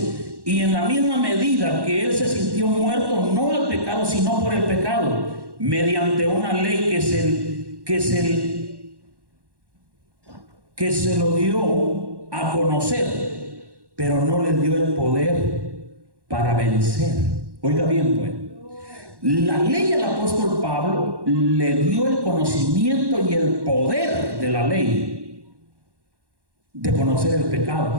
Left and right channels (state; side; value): late; left; 1.1 ms